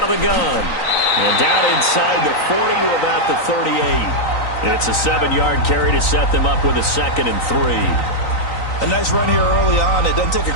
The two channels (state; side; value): late; right; 3.9 ms